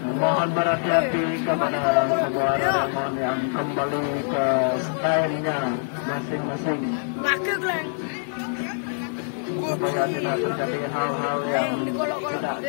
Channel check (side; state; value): right; silent; digital silence